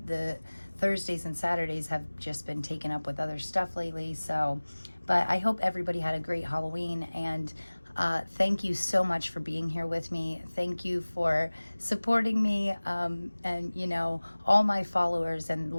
the Thursdays and Saturdays have just been taken up with other stuff lately. So, but I hope everybody had a great Halloween, and thank you so much for being here with me. Thank you for supporting me, and you know, all my followers and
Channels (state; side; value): inverted; both; correlation -1.00